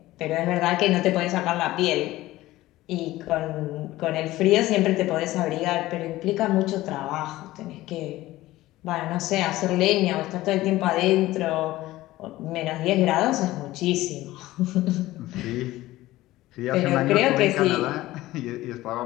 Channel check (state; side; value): quieter; right; 16.9 dB